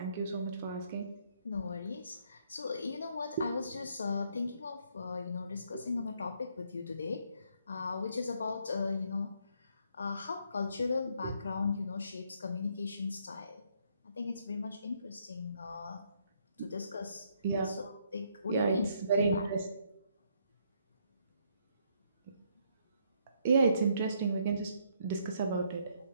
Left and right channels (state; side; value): inverted; both; correlation -0.71